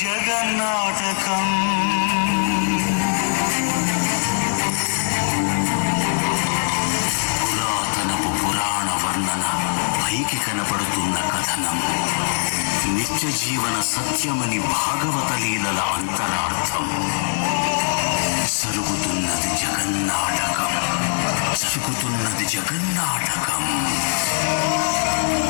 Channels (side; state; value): right; silent; 65 dB below the other